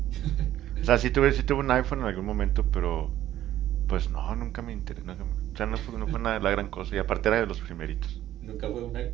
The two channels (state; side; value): quieter; left; 12.9 dB